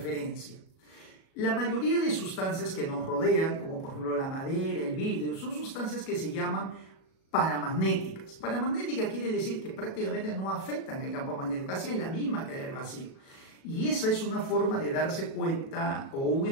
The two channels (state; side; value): late; right; 37 ms